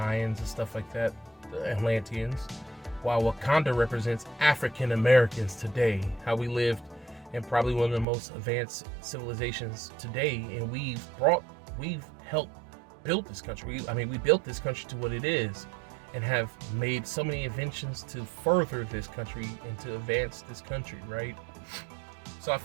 and stuff like that, the Atlanteans, while Wakanda represents African Americans today, how we lived in probably one of the most advanced civilizations today, and we've helped build this country. We built this country to what it is, and have made so many inventions to further this country and to advance this country, right? So I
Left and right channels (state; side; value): drops out; left; at 8.1 s